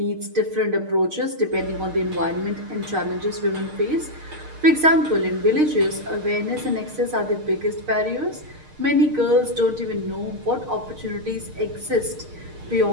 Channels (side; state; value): left; late; 6.5 ms